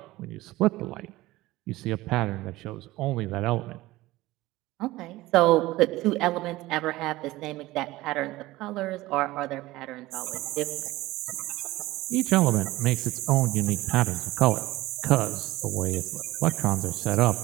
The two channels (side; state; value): left; quieter; 18.2 dB